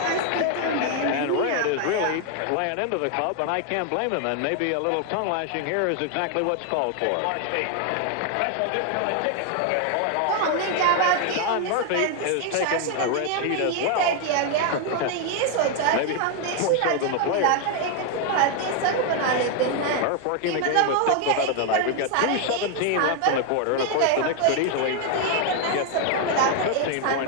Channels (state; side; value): different; both; correlation 0.01